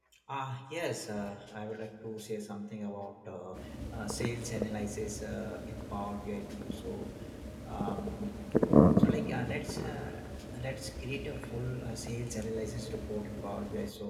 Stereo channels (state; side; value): identical; both; correlation 1.00